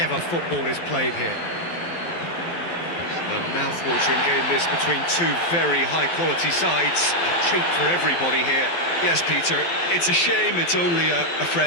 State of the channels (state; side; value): late; right; 12 ms